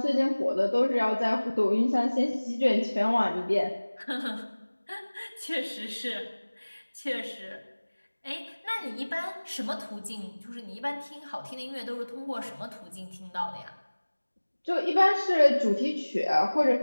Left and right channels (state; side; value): inverted; both; correlation -1.00